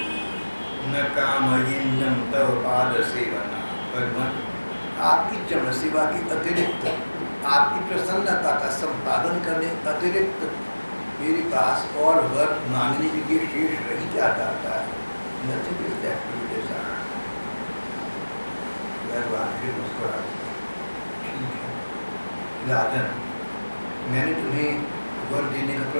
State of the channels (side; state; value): both; inverted; correlation -1.00